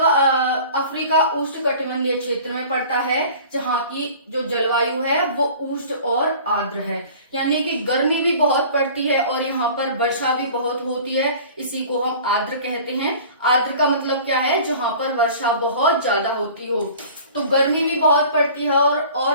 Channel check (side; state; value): both; inverted; correlation -0.44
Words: अफ्रीका उष्णकटिबंधीय क्षेत्र में पड़ता है, जहाँ की जो जलवायु है वो उष्ण और आर्द्र है, यानी कि गर्मी भी बहुत पड़ती है और यहाँ पर वर्षा भी बहुत होती है। इसी को हम आर्द्र कहते हैं। आर्द्र का मतलब क्या है? जहाँ पर वर्षा बहुत ज्यादा होती हो। तो गर्मी भी बहुत पड़ती है